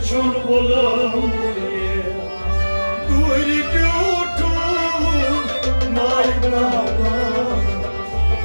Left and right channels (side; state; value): both; inverted; correlation -1.00